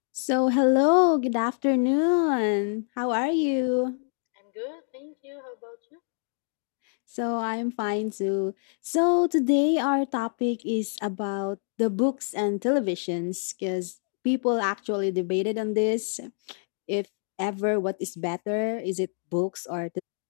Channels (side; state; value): right; silent; 60 dB below the other